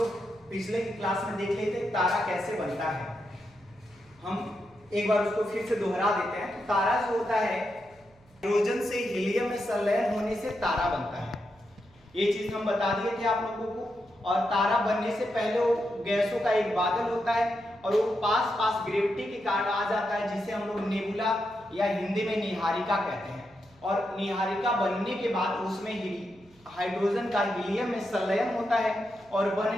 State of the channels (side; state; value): right; noise; hum, 29 dB below the sound